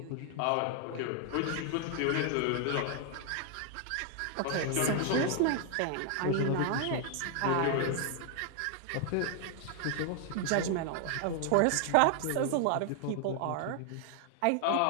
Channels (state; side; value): different; both; correlation 0.00